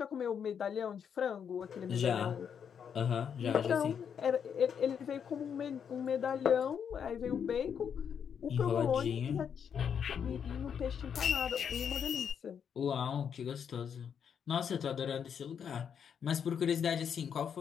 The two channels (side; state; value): right; quieter; 7.6 dB